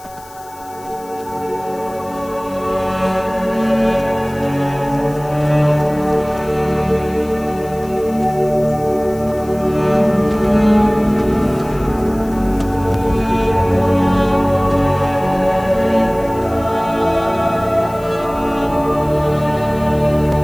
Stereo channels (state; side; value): noise; left; hiss, 22 dB below the sound